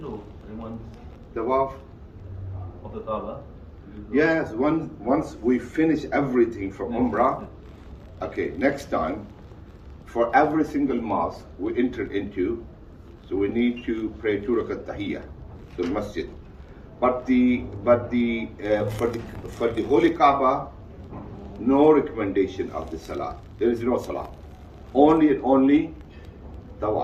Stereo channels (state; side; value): identical; both; correlation 1.00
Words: or anyone Tawaf. of the Kaaba? Yes, once we finish everything from Umrah, okay, next time, for every single mosque we enter into, so we need to pray 2 rakat tahiyyah to the masjid. But for the Holy Kaaba, no recommendation of the salah. There is no salah. Only and only